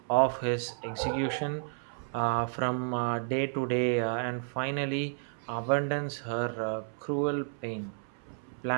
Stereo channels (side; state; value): left; silent; 57 dB below the other